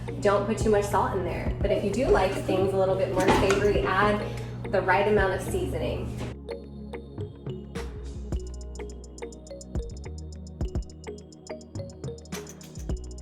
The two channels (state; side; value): identical; both; correlation 1.00